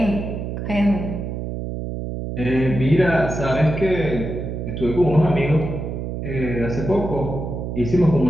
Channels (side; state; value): right; noise; hum, 5 dB below the sound